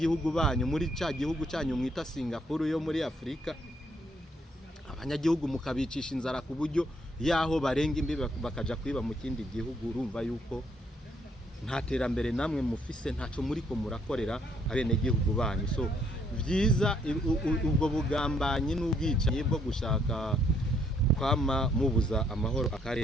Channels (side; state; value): both; normal; correlation 0.70